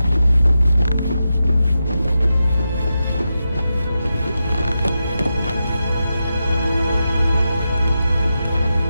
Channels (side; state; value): both; inverted; correlation -0.89